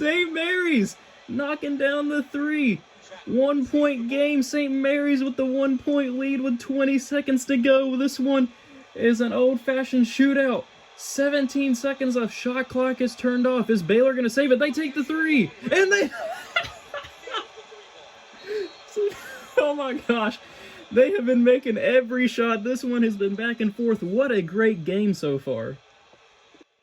Mary's knocking down the 3. 1-point game. St. Mary's with the 1-point lead with 20 seconds to go. This one is an old-fashioned shootout. 17 seconds of shot clock is turned off. Is Baylor going to save it? They take the 3. And they... Oh my gosh. They have been making every shot. This one has been back and forth. What a great game so far.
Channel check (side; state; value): both; identical; correlation 1.00